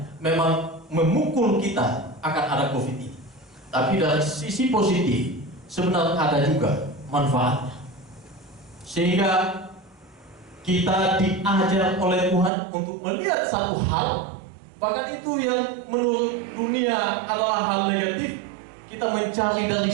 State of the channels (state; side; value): drops out; left; at 12.5 s